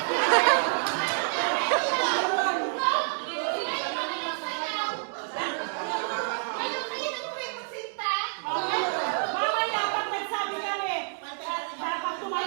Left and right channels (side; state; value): left; silent; digital silence